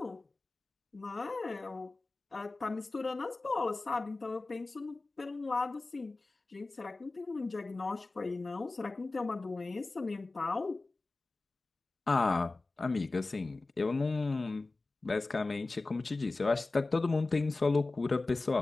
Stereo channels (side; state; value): right; quieter; 3.3 dB